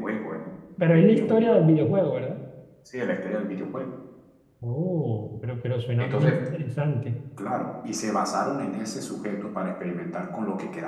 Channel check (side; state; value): both; identical; correlation 1.00